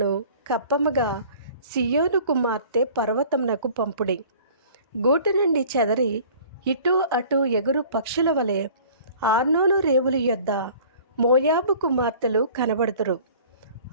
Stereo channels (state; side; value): inverted; both; correlation -0.48